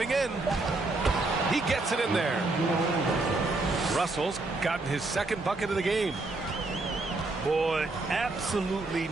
in. He gets it in there. Russell's gotten his second bucket of the game. Boy, absolutely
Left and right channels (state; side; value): quieter; left; 3.2 dB